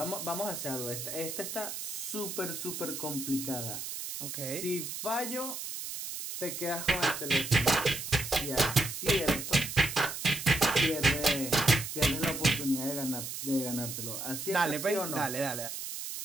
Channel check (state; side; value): noise; right; hiss, 6 dB below the sound